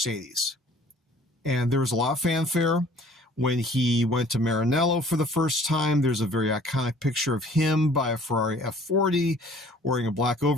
And there was a lot of fanfare when he went to Maranello for the first time. There's a very iconic picture of him by a Ferrari F40 wearing a black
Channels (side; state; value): both; normal; correlation 0.53